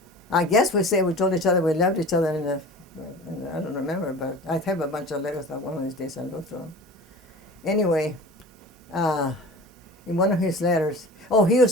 I guess we told each other we loved each other, and I don't remember, but I have a bunch of letters that one of these days I'll go through them. Anyway, in one of his letters, he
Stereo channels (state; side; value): normal; both; correlation 0.38